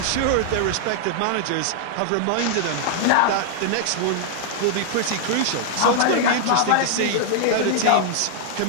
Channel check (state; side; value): different; both; correlation -0.01